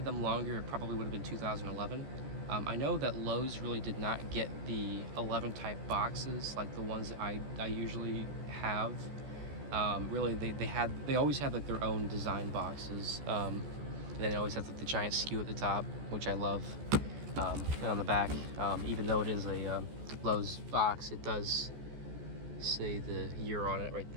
them longer, it probably would have been 2011. I know that Lowe's really did not get the 11 type boxes like the ones that I usually have. Really, they always had their own design boxes, and then they always have the giant skew at the top, which I love. And on the back, even though it is a Lowe's box, it does say the year on it right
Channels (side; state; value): left; late; 14 ms